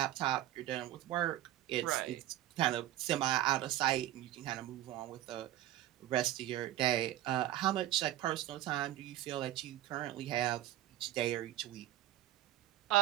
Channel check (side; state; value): left; quieter; 14.0 dB